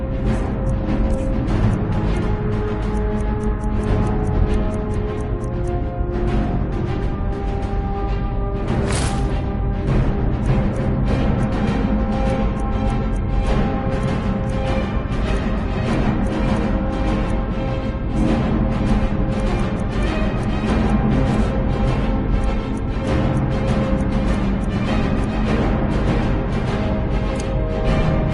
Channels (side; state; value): both; identical; correlation 1.00